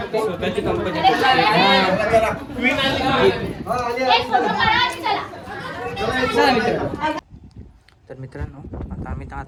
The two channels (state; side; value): identical; both; correlation 1.00